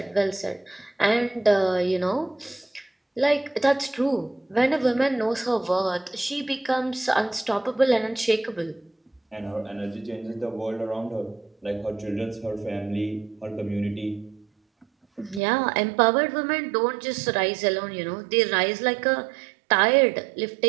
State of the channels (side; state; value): left; drops out; at 15.4 s